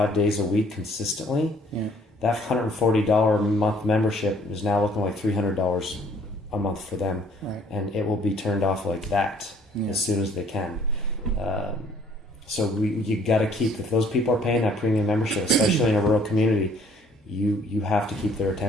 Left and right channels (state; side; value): normal; both; correlation 0.60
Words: days a week consistently. Yeah. That $140 a month membership is now looking like $300 a month for them. Right. And it will be turned off like that as soon as they can. So you got to keep, if those people are paying that premium membership, especially in a rural community, you have to keep their